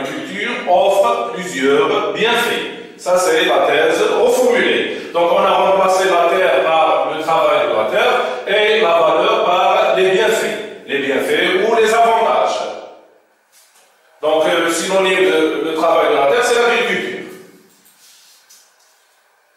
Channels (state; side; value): identical; both; correlation 1.00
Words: offre plusieurs bienfaits. Ça c'est la thèse reformulée. Donc on a remplacé la terre par le travail de la terre et la valeur par les bienfaits ou les avantages. Donc le synonyme de travail de la terre, c'est l'agriculture.